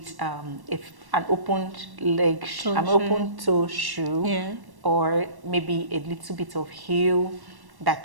an open leg, an open toe shoe, Yeah. or maybe a little bit of heel,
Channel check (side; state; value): left; late; 1.1 ms